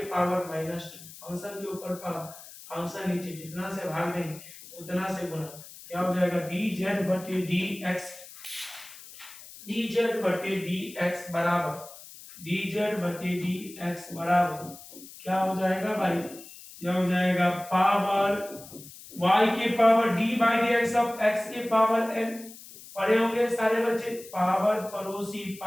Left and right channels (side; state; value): left; noise; hiss, 17 dB below the sound